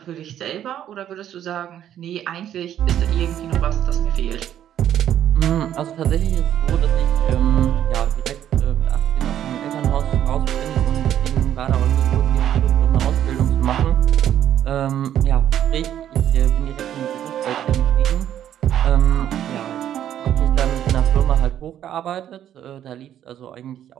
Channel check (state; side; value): quieter; left; 10.7 dB